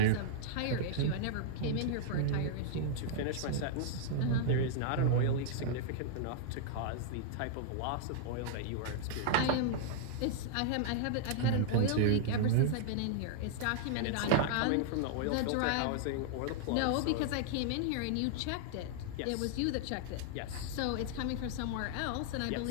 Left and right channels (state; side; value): different; both; correlation -0.01